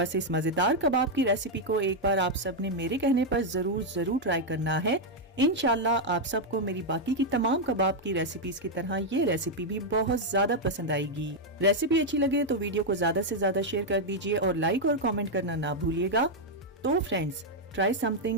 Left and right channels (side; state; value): both; normal; correlation -0.01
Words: इस मजेदार कबाब की रेसिपी को एक बार आप सब ने मेरे कहने पर जरूर ट्राई करना है। इंशाल्लाह आप सबको मेरी बाकी की तमाम कबाब की रेसिपीज की तरह ये रेसिपी भी बहुत ज्यादा पसंद आएगी। रेसिपी अच्छी लगे तो वीडियो को ज्यादा से ज्यादा शेयर कर दीजिए और लाइक और कमेंट करना ना भूलिएगा। तो फ्रेंड्स, ट्राई